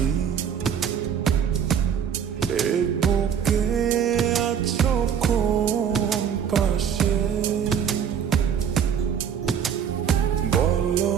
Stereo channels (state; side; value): quieter; left; 8.1 dB